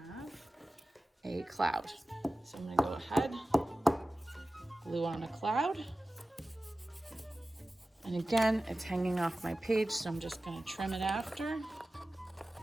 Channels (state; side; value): normal; both; correlation 0.96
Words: a cloud. So I'm gonna go ahead, glue on a cloud. And again, it's hanging off my page, so I'm just gonna trim it after.